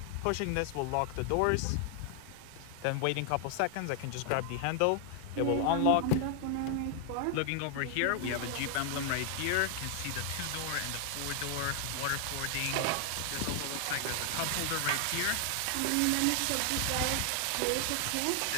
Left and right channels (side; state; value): both; different; correlation 0.00